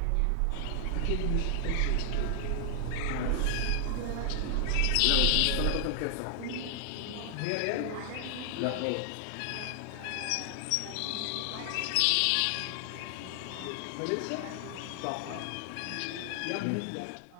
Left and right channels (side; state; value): both; different; correlation 0.00